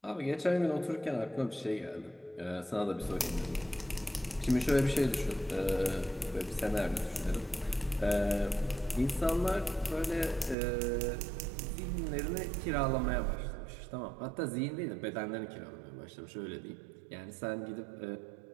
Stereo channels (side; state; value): left; drops out; at 10.6 s